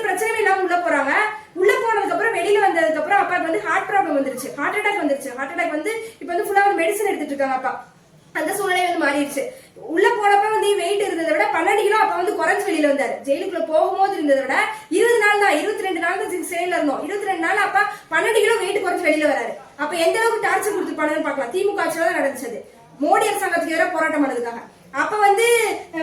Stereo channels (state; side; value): identical; both; correlation 1.00